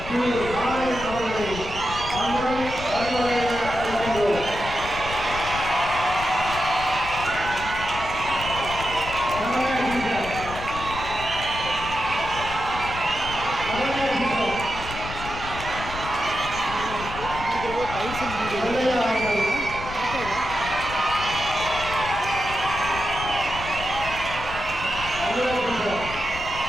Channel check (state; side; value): noise; left; rumble, 10 dB below the sound